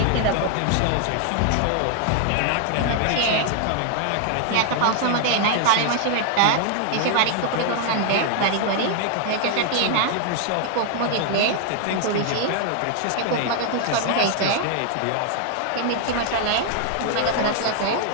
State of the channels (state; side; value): different; both; correlation 0.00